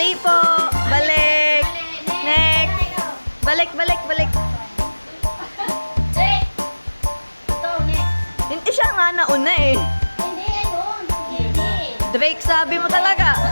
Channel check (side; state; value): both; inverted; correlation -1.00